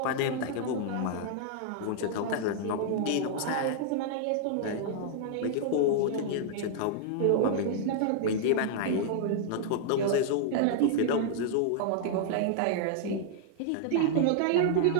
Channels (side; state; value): both; different; correlation -0.01